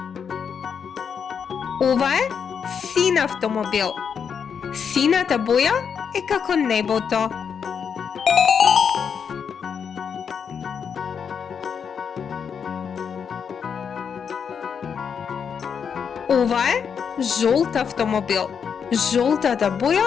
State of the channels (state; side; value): quieter; right; 6.9 dB